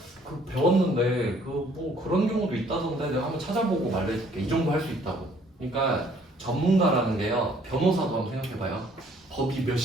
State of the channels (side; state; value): both; normal; correlation 0.60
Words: 배웠는데 뭐 그런 경우도 있다던데 내가 한번 찾아보고 말해줄게. 이 정도 할 수 있다고. 그러니까 전문가라는 게요. 변호사도 한번 생각해봐요. 법이